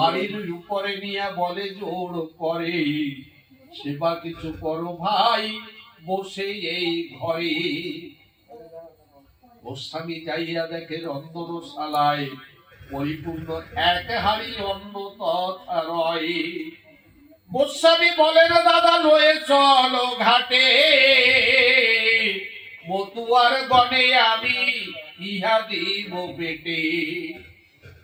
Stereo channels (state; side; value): identical; both; correlation 1.00